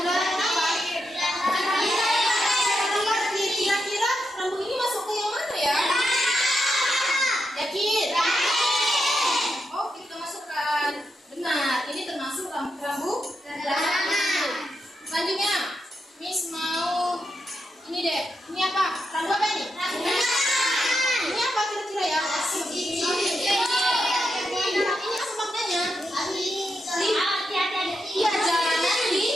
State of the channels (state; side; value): normal; both; correlation 0.85